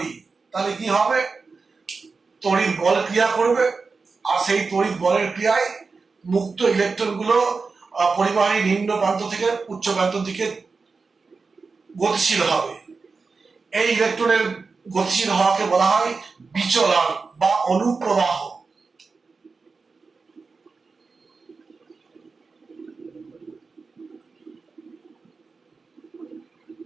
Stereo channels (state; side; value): quieter; left; 4.5 dB